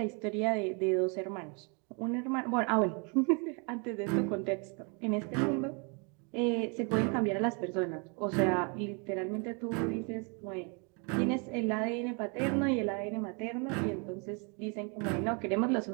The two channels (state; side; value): quieter; left; 34.6 dB